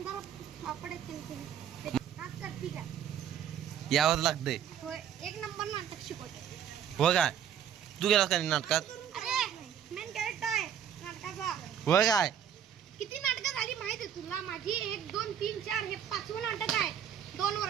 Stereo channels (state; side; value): quieter; left; 9.2 dB